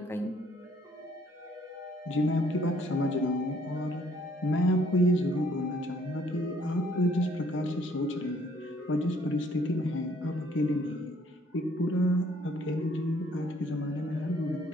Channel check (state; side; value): normal; both; correlation 0.63